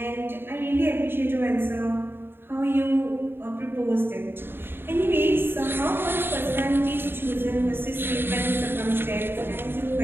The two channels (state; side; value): late; left; 0.10 ms